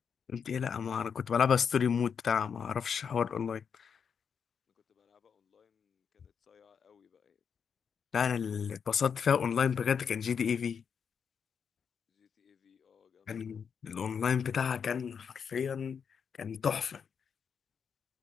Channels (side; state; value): right; quieter; 6.8 dB